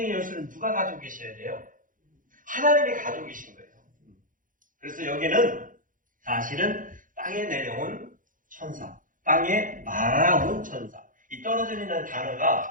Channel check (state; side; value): late; left; 0.39 ms